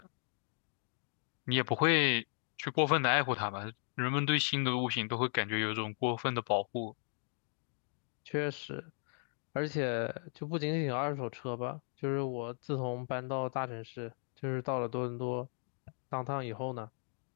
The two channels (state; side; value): silent; right; 54 dB below the other